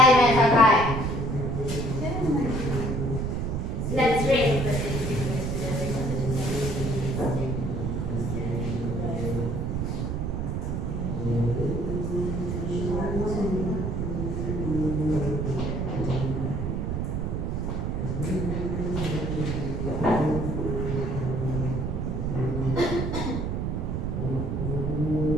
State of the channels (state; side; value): noise; right; rumble, 1 dB below the sound